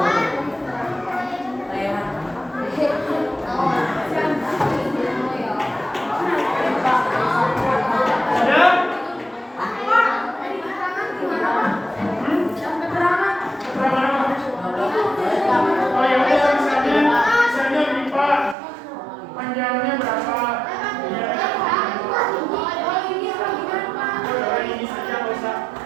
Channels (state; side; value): drops out; left; at 18.6 s